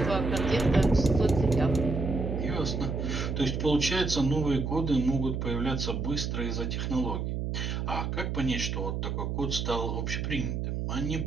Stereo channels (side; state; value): right; noise; hum, 2 dB below the sound